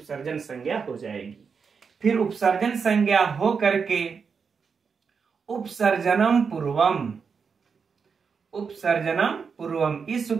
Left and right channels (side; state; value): left; quieter; 5.8 dB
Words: संज्ञा हो जाएगी। फिर उपसर्जन संज्ञा हो करके उपसर्जनम पूर्वम, उपसर्जनम पूर्वम इस